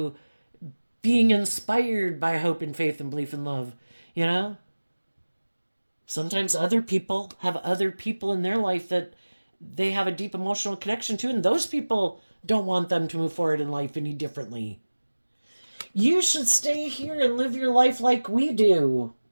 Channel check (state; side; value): inverted; both; correlation -1.00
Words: being inspired by hope and faith and belief and love. You know, sometimes other people have other people in their life that they have a deep emotional connection to, and those people don't want them to move forward in life any differently. You should stay here and live your life like we do.